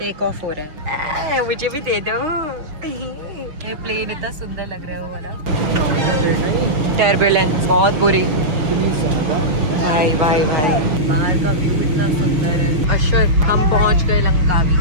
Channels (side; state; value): left; late; 6.3 ms